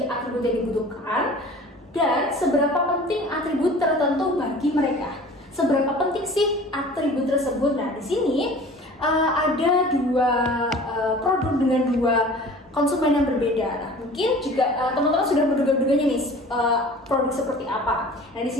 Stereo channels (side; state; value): both; normal; correlation 0.44